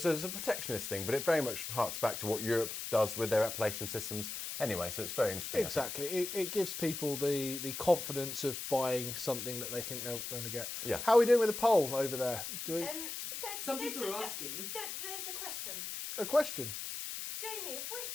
a protectionist thing, but it very much harks back to what Europe does with their appellation systems anyway, so it's very interesting. Exactly. It gives people the confidence of buying something that they think they're going to get. Yeah. How are we doing with the poll over there? Do we... Some people are asking. There's a question. A question? Jamie, have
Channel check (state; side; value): noise; left; hiss, 6 dB below the sound